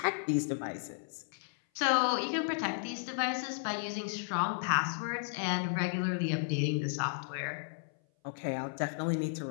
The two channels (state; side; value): silent; right; 55 dB below the other